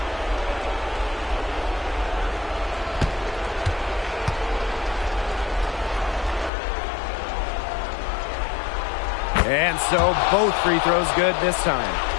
And so both free throws good this time.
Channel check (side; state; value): right; drops out; at 6.5 s